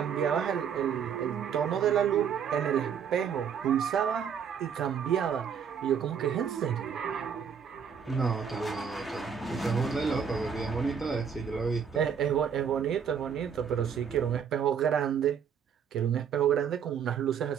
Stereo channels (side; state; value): left; quieter; 7.4 dB